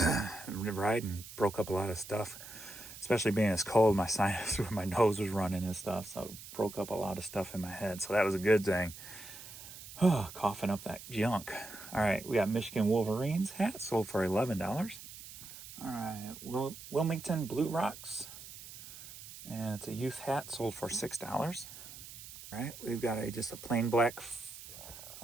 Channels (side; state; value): right; noise; hiss, 14 dB below the sound